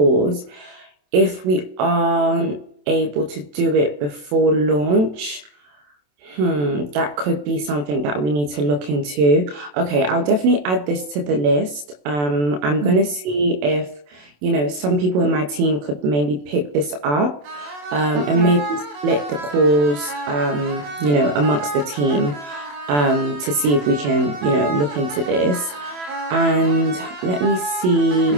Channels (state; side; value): late; left; 27 ms